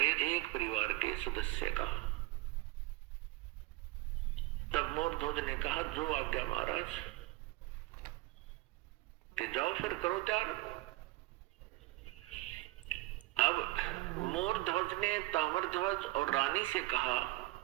एक परिवार के सदस्य का। तब मोरध्वज ने कहा जो आज्ञा महाराज, कि जाओ फिर करो त्याग। अब मोरध्वज ने ताम्रध्वज और रानी से कहा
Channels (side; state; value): left; quieter; 19.1 dB